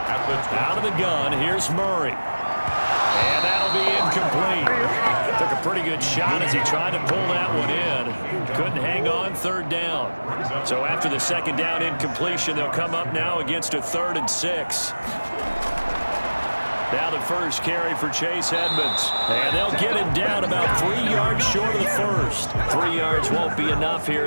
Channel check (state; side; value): inverted; both; correlation -1.00